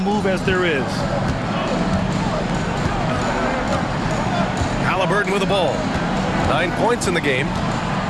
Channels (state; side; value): identical; both; correlation 1.00